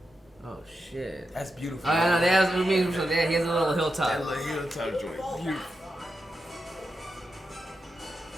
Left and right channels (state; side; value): normal; both; correlation 0.88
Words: Oh shit. That's beautiful. I know. He has a little hilltop. That little hilltop joint. Beautiful.